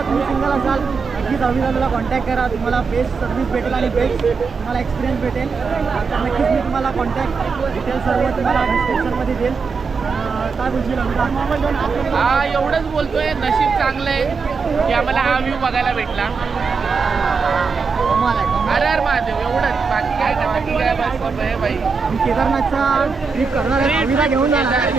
तुम्ही सिंगल असाल, नक्कीच अविदाला कॉन्टॅक्ट करा. तुम्हाला बेस्ट सर्व्हिस भेटेल आणि बेस्ट तुम्हाला एक्सपिरियन्स भेटेल. तर नक्कीच मी तुम्हाला कॉन्टॅक्ट डिटेल्स सर्व तुम्हाला डिस्क्रिप्शनमध्ये देईल. काय बोलशील अविदा? हा एवढंच बोलतोय, नशीब चांगलं आहे की आम्हाला हा व्ह्यू बघायला भेटला. अरे अरे महादेव, एवढंच, बाकी काय नाही. बाकी काय बस आहे बाई. मी केदारनाथचा ट्रिप करणार आहे, अविदा घेऊन जाणार.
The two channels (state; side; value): quieter; left; 5.0 dB